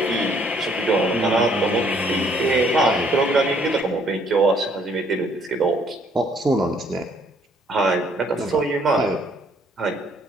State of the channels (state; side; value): normal; both; correlation 0.64